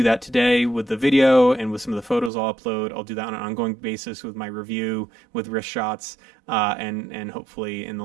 that today with the video and with some of the photos I'll upload. I'll do that on an ongoing basis with my review, with wrist shots, and hopefully in the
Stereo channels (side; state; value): left; drops out; at 2.3 s